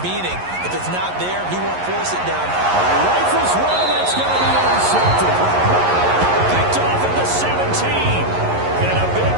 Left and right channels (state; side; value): late; left; 11 ms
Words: if it's not there, he won't force it down. Rifles one, that's going to be intercepted. Picked off at the 17. And a big